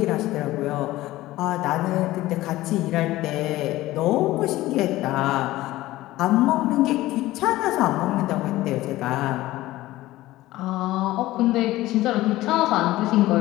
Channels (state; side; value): quieter; right; 16.9 dB